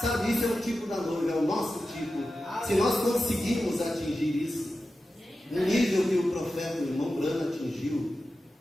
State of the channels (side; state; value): both; normal; correlation 0.92